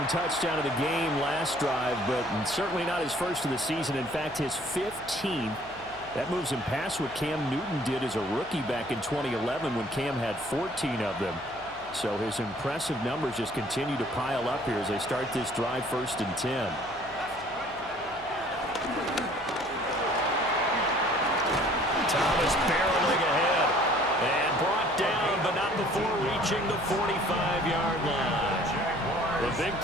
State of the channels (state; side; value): noise; left; hum, 22 dB below the sound